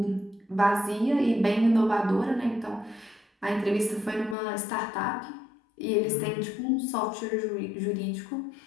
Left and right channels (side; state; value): right; drops out; at 4.4 s